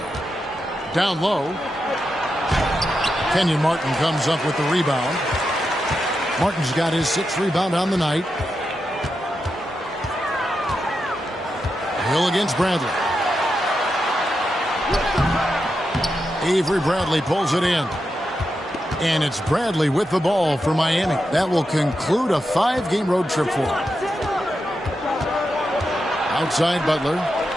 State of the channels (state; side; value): normal; both; correlation 0.87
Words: Down low. Kenyon Martin comes up with the rebound. Martin's got his 6th rebound on the night. Hill against Bradley. Avery Bradley pulls it in. And it's Bradley with the ball for Miami. That will conclude a 5-game road trip for him. Outside Butler.